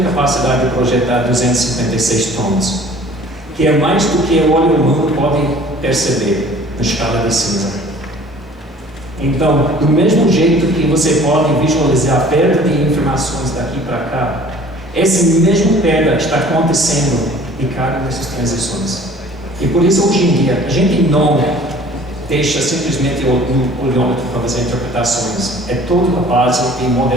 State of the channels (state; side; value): normal; both; correlation 0.50